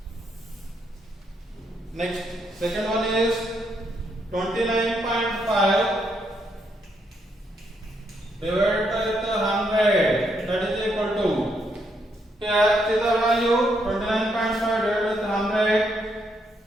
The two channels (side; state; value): both; normal; correlation 0.76